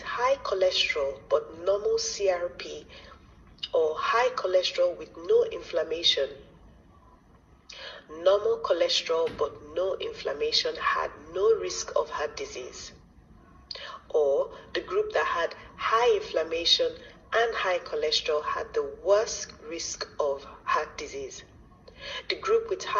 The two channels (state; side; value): identical; both; correlation 1.00